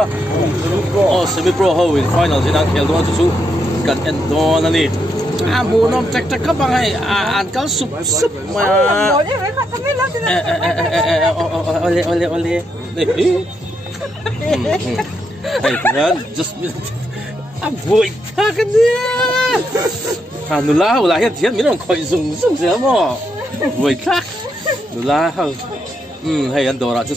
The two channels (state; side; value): normal; both; correlation 0.80